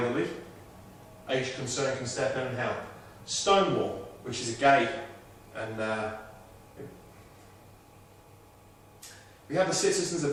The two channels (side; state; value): both; identical; correlation 1.00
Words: Age Concern can step in and help. Stonewall, which is a gay and We have the Citizens